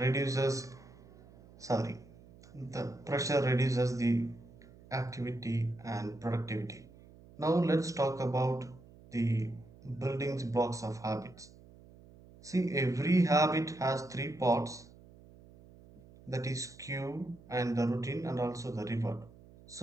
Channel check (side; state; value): right; noise; hum, 22 dB below the sound